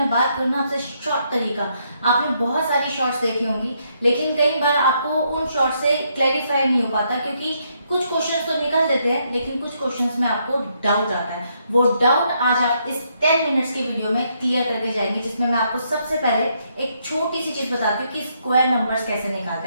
बात करूँ ना आपसे शॉर्ट तरीका, आपने बहुत सारी शॉर्ट्स देखी होंगी लेकिन कई बार आपको उन शॉर्ट से क्लैरिफाई नहीं हो पाता क्योंकि कुछ क्वेश्चंस तो निकल देते हैं लेकिन कुछ क्वेश्चंस में आपको डाउट आता है। वो डाउट आज आप इस 10 मिनट्स की वीडियो में क्लियर करके जाएंगे, जिसमें मैं आपको सबसे पहले एक छोटी सी चीज बताती हूँ कि स्क्वायर नंबर्स कैसे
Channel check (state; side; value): inverted; both; correlation -0.75